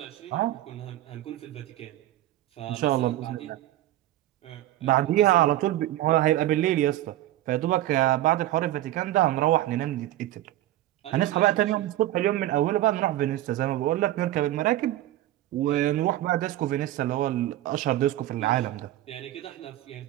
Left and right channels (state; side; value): quieter; left; 14.6 dB